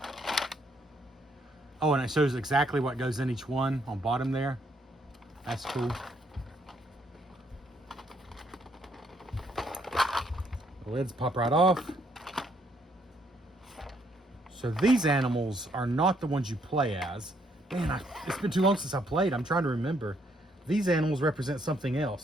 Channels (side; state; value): both; normal; correlation 0.71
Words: Oh, and it shows exactly what goes in each one on bottom there. That's cool. The lids pop right off. So these animals are not the ones you play as. Man, it's been too long since I played. I'm trying to remember. These animals represent something